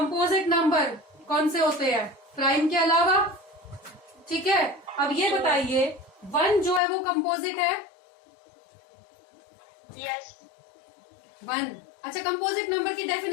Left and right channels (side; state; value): right; drops out; at 6.8 s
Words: नंबर कौन से होते हैं प्राइम के अलावा? ठीक है, अब ये बताइए 1 जो है वो कंपोजिट है? यस 1। अच्छा, कंपोजिट नंबर की